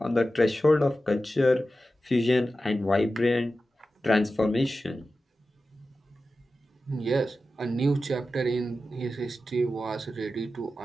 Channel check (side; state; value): both; normal; correlation 0.93